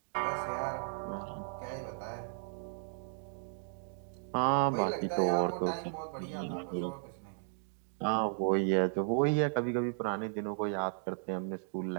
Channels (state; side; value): silent; left; digital silence